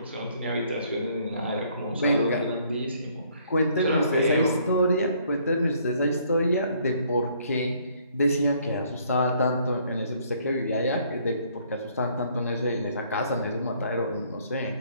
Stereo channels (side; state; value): both; inverted; correlation -0.64